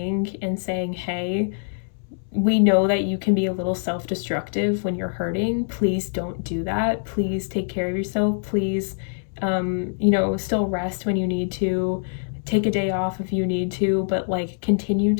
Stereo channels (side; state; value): right; silent; 63 dB below the other